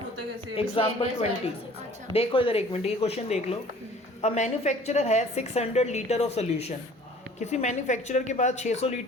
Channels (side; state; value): both; normal; correlation 0.50